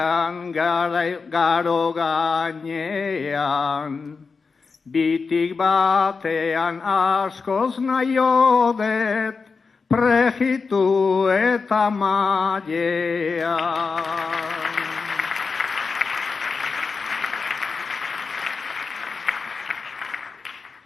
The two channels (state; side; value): quieter; right; 4.8 dB